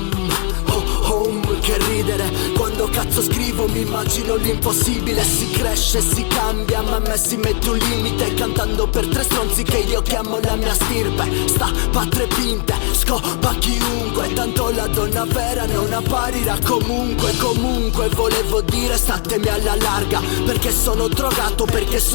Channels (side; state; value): right; quieter; 38.0 dB